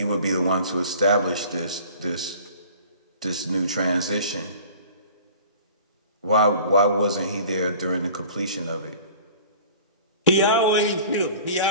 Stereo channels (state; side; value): inverted; both; correlation -0.45